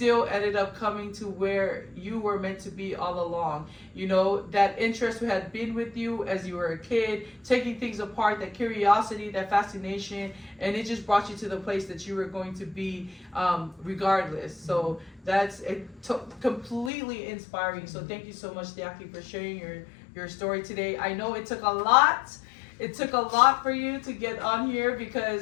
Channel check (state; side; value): drops out; right; at 16.9 s